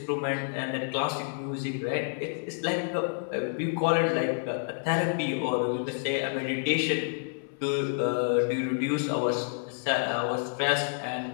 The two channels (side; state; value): right; silent; 59 dB below the other